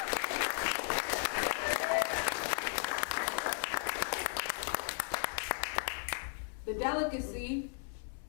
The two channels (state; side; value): silent; right; 54 dB below the other